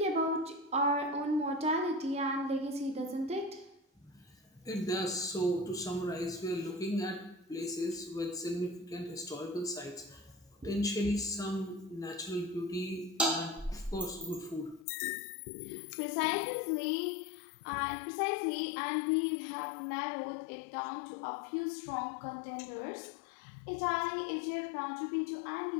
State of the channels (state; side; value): drops out; right; at 14.9 s